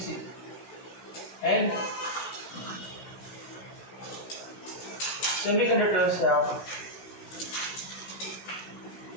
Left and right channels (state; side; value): late; right; 16 ms